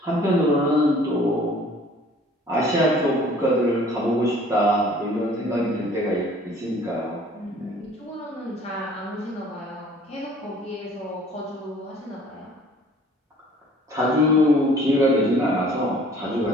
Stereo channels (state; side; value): normal; both; correlation 0.52